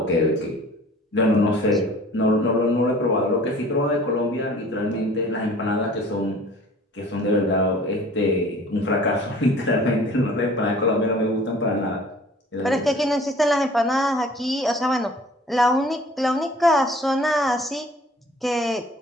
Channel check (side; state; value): both; normal; correlation 0.49